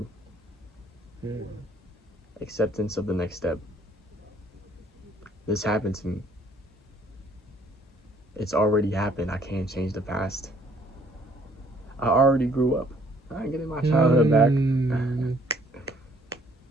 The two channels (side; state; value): both; normal; correlation 0.62